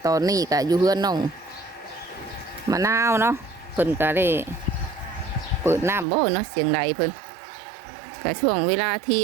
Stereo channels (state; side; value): drops out; left; at 6.1 s